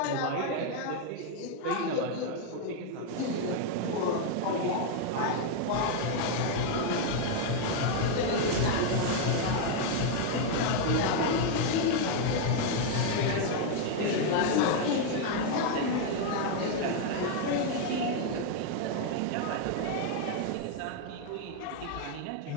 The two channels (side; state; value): both; different; correlation 0.00